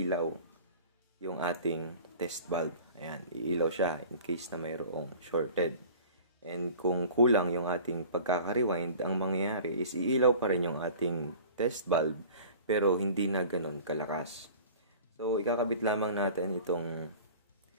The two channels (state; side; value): inverted; both; correlation -0.42